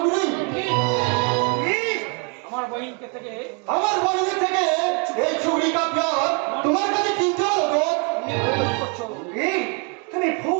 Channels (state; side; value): quieter; left; 35.5 dB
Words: আমার বহিনকে থেকে আমার বন্ধু থেকে এই চুগলি का प्यार তোমার কাছে কিনতে হলো তো? তুমি ভুল করছো এই, তুমি